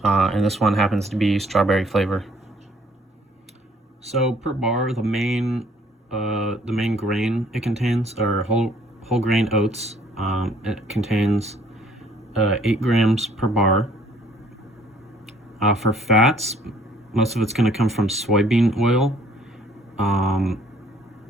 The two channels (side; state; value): both; normal; correlation 0.60